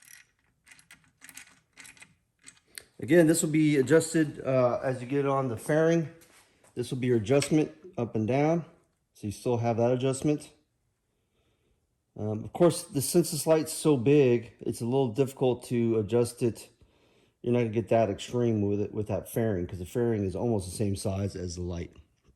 Again, this will be adjusted as you get on the fairing. This will be your adjustment up and down, so you still have that adjustment. Of course, since this light's so big, it's a little difficult to adjust it. You're not gonna get that extreme with it with that fairing, because the fairing is almost the same size as the light.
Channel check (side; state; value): both; identical; correlation 1.00